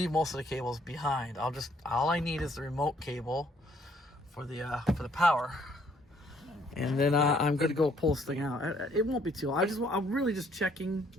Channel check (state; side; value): normal; both; correlation 0.65